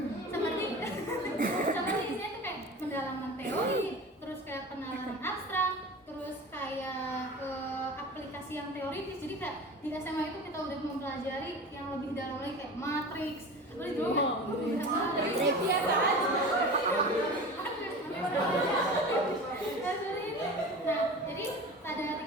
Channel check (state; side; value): normal; both; correlation 0.34